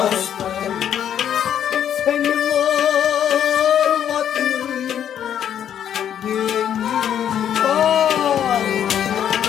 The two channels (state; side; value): quieter; right; 9.6 dB